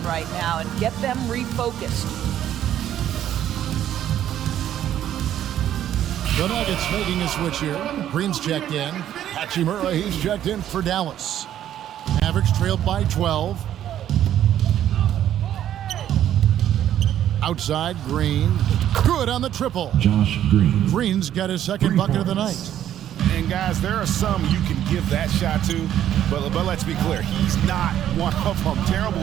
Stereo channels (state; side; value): quieter; left; 11.2 dB